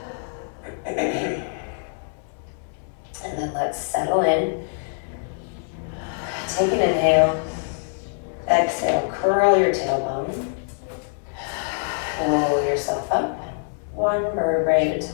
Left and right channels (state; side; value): silent; right; digital silence